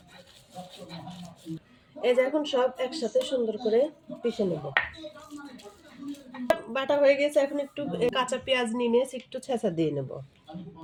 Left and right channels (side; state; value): both; identical; correlation 1.00